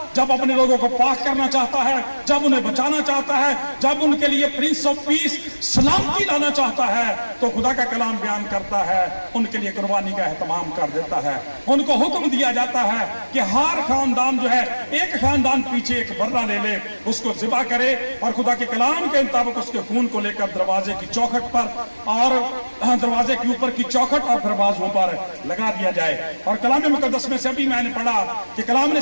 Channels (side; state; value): both; inverted; correlation -1.00